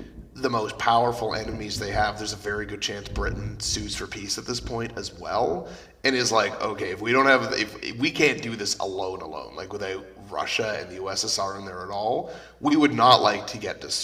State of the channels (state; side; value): identical; both; correlation 1.00